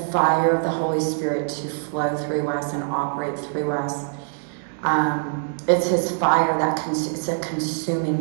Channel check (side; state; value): left; silent; digital silence